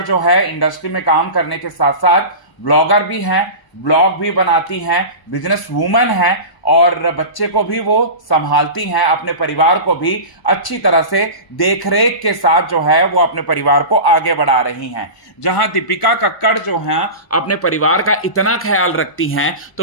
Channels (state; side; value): late; right; 1.0 ms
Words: जो है इंडस्ट्री में काम करने के साथ साथ ब्लॉगर भी हैं, ब्लॉग भी बनाती हैं, बिजनेस वूमन हैं और बच्चे को भी वो संभालती हैं, अपने परिवार को भी अच्छी तरह से देखरेख के साथ जो है वो अपने परिवार को आगे बढ़ा रही हैं। जहां दीपिका कक्कड़ जो हैं अपने परिवार का इतना ख्याल रखती हैं,